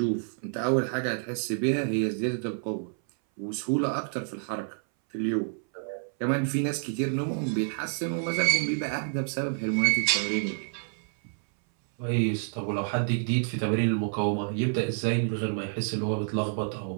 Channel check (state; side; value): silent; left; 59 dB below the other